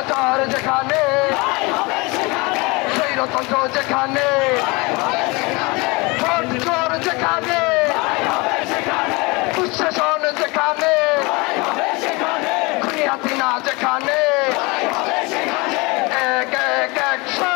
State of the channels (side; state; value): right; quieter; 25.9 dB